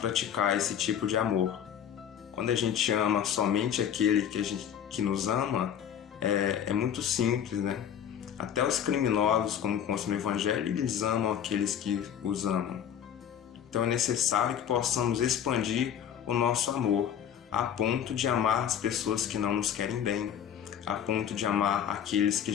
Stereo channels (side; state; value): right; quieter; 9.0 dB